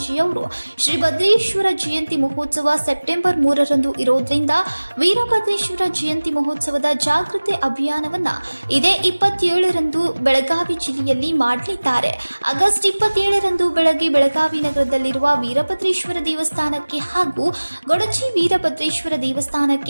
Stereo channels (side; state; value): both; inverted; correlation -1.00